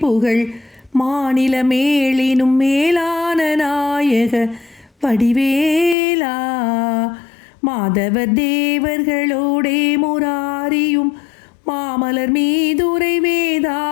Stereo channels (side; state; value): right; drops out; at 6.0 s